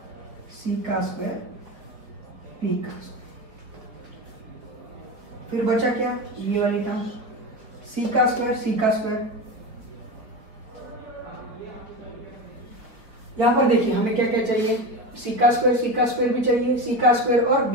सी का स्क्वायर पी का स्क्वायर। फिर बचा क्या? ये वाली टर्म सी का स्क्वायर सी का स्क्वायर। यहां पर देखिए हमें क्या क्या चाहिए? सी का स्क्वायर भी चाहिए, सी का स्क्वायर और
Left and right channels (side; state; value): left; late; 4.6 ms